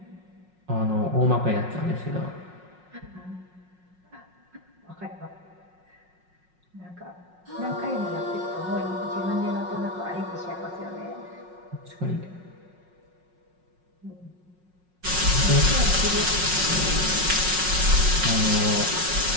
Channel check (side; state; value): left; late; 5.5 ms